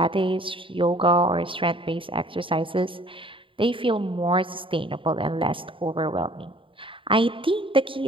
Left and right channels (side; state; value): left; late; 0.25 ms